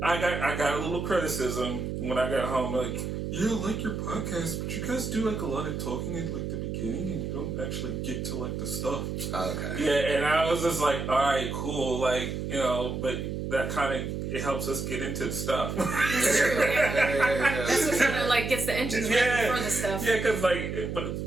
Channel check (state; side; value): noise; right; hum, 4 dB below the sound